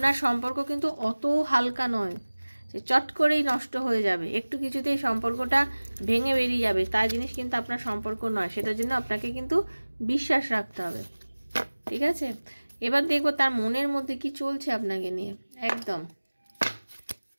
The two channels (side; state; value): both; inverted; correlation -1.00